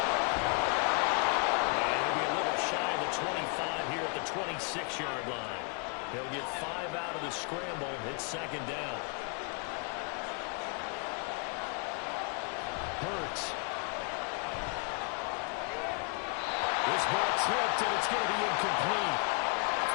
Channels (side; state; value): right; quieter; 37.0 dB